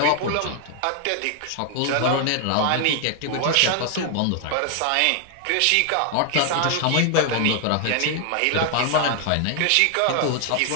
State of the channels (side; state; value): both; different; correlation 0.00